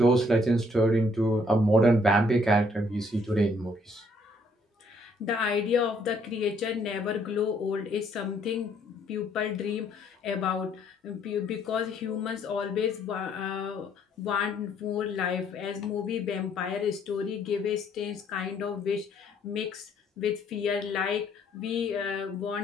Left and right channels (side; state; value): both; normal; correlation 0.66